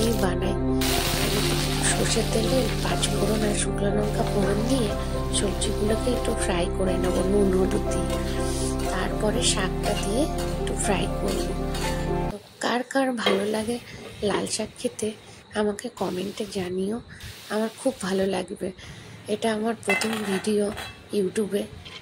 বানাই। সর্ষের তেলে 5 ফোড়ন আর শুকনো লঙ্কা ফোড়ন দিয়ে সবজিগুলোকে একটু ফ্রাই করে নেবো নুন হলুদ দিয়ে। তারপরে শাকটা দিয়ে একটু ফ্রাই করবো। তো কার কার ভালো লাগে লাল শাক খেতে আমাকে কমেন্টে জানিও, আমার খুব ভালো লাগবে। এটা আমার প্রথম ভিডিও ইউটিউবে।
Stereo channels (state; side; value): identical; both; correlation 1.00